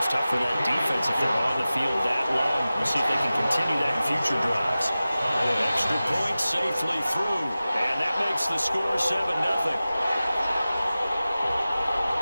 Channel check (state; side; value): inverted; both; correlation -0.96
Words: tough for that defense if they're on the field that long. We'll see if they can continue that in future drives. Extra point safely through, and that makes the score 7-0.